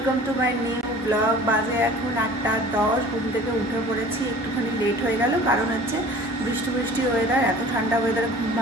to my new blog. বাজে এখন 8:10, ঘুম থেকে উঠে পড়েছি। একটুখানি লেট হয়ে গেল, কারণ হচ্ছে বৃষ্টি ওয়েদার, এত ঠান্ডা ওয়েদারে ঘুম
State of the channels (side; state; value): both; normal; correlation 0.45